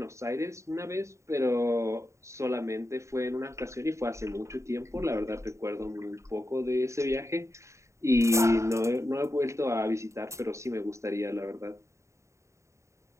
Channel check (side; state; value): left; late; 0.14 ms